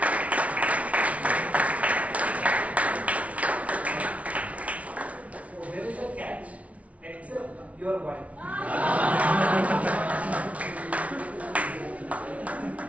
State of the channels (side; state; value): left; late; 0.066 ms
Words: So there is a catch, except your wife.